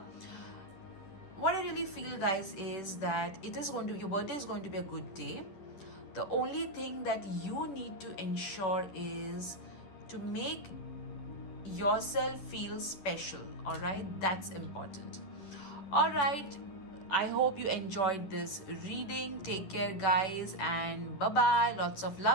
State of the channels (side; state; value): right; late; 10 ms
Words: What I really feel, guys, is that your birthday is going to be a good day. The only thing that you need to ensure is to make yourself feel special. All right, that's important. All right, I hope you enjoyed this reading. Take care, guys, and bye bye. Lots of